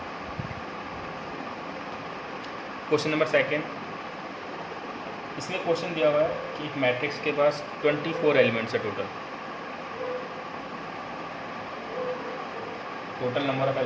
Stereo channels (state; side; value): identical; both; correlation 1.00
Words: क्वेश्चन नंबर सेकंड, इसमें क्वेश्चन दिया हुआ है कि एक मैट्रिक्स के पास 24 एलिमेंट्स है टोटल नंबर ऑफ